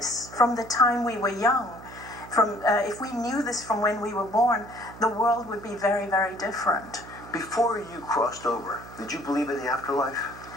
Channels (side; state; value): right; noise; hum, 17 dB below the sound